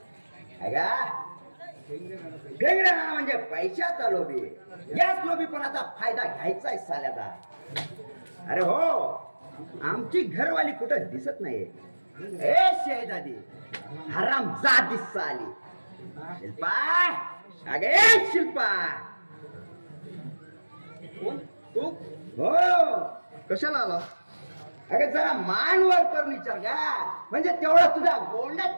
फेंगड्या नाना म्हणजे पैशाचा लोभी. याच लोभीपणाचा फायदा घ्यायचा आहे साल्याचा. अरे हो, आमची घरवाली कुठं दिसत नाही. ए शेजादी, हराम जात दिसत आली. शिल्पा, अगे शिल्पा. कोण तू? हो, कशाला आला? अगं जरा मान वर कर विचार का, म्हणजे तेवढा तुझ्या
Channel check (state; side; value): inverted; both; correlation -1.00